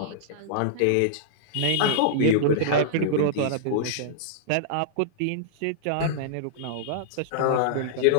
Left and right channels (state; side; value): different; both; correlation -0.02